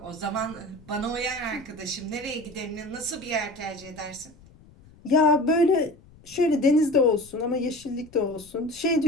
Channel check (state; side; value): noise; left; rumble, 24 dB below the sound